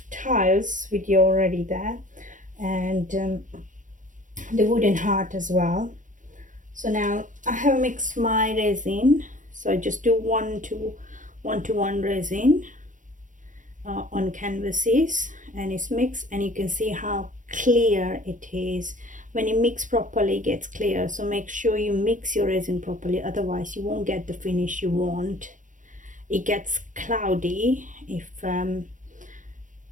tiles video already there, and the wooden heart as well. So now I have mixed my resin, so I just do one to one resin on canvases, and it's mixed, and you can see how clear it is. When you mix properly, it gets clear. So make sure you mix your resin properly, otherwise you won't get the finish you want. It gets cloudy if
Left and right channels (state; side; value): late; left; 0.37 ms